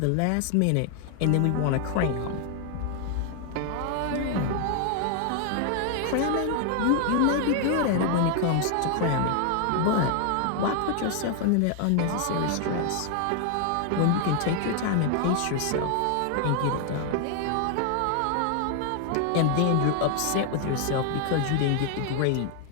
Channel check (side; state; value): both; different; correlation 0.00